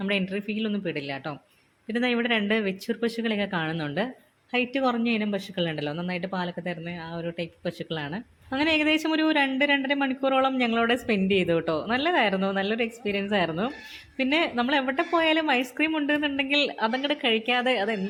എൻട്രി ഫീലൊന്നും പെടില്ല കേട്ടോ. പിന്നെ ഇവിടെ 2 വെച്ചൂർ പശുക്കളെയൊക്കെ കാണുന്നുണ്ട്. ഹൈറ്റ് കുറഞ്ഞ ഇനം പശുക്കളുണ്ടല്ലോ, നന്നായിട്ട് പാലൊക്കെ തരുന്ന ആ ഒരു ടൈപ്പ് പശുക്കളാണ്. അങ്ങനെ ഏകദേശം ഒരു 2-2.5 മണിക്കൂറോളം ഞങ്ങളവിടെ സ്പെൻഡ് ചെയ്തു കേട്ടോ. നല്ലതായിരുന്നു, നല്ലൊരു എക്സ്പീരിയൻസ് ആയിരുന്നു. പിന്നെ നമ്മൾ എവിടെ പോയാലും ഐസ്ക്രീം ഉണ്ടെന്നുണ്ടെങ്കിൽ അതങ്ങോട്ട് കഴിക്കാതെ, അത്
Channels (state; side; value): identical; both; correlation 1.00